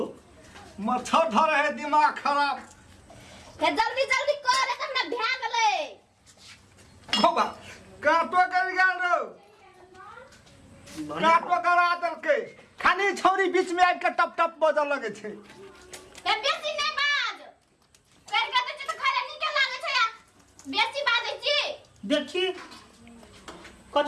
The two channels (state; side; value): identical; both; correlation 1.00